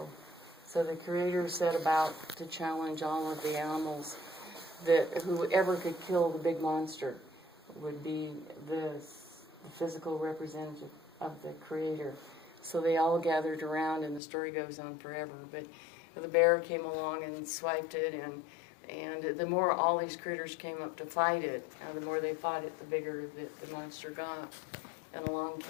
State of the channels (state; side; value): drops out; right; at 14.2 s